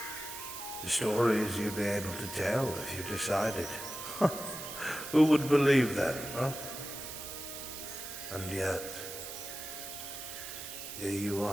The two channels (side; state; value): right; noise; hiss, 9 dB below the sound